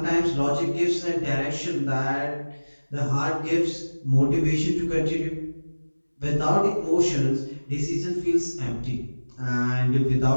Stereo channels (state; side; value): inverted; both; correlation -1.00